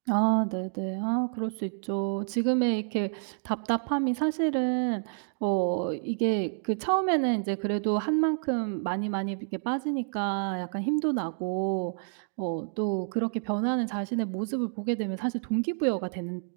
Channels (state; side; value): silent; left; digital silence